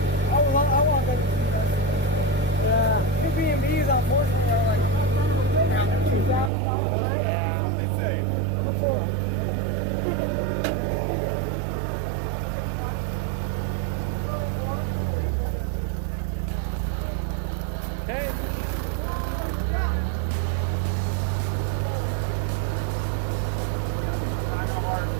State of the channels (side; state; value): left; drops out; at 6.5 s